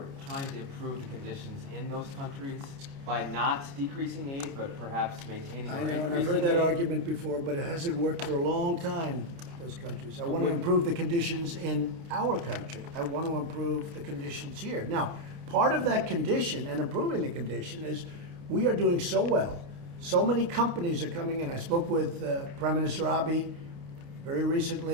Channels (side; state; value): left; late; 29 ms